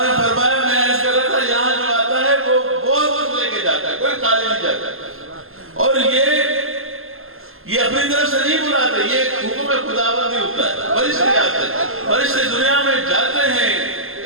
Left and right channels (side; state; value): left; late; 0.61 ms